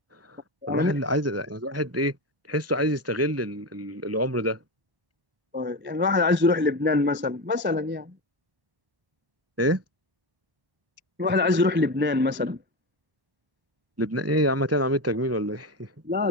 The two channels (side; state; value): left; late; 1.1 ms